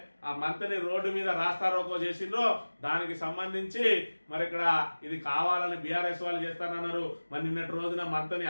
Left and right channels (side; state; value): both; inverted; correlation -1.00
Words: ఆ మంత్రిని రోడ్డు మీద రాస్తా రోకో చేసిండ్రో దానికి సంబంధించి మరి ఇక్కడ ఇది కావాలని బీఆర్ఎస్ వాళ్ళు చేస్తానన్నారు. మరి నిన్నటి రోజున మంత్రిని